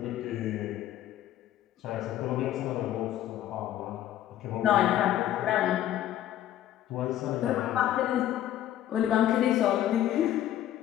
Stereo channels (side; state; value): right; quieter; 12.3 dB